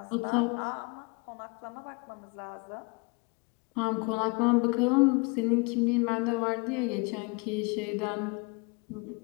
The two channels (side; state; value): right; quieter; 30.3 dB